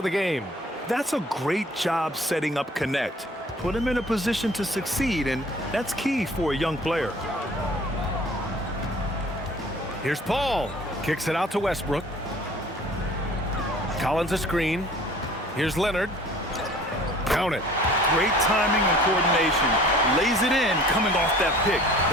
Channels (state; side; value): normal; both; correlation 0.50